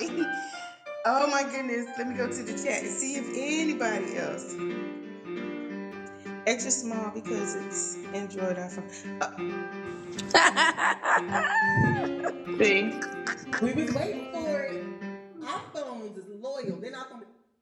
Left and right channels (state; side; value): identical; both; correlation 1.00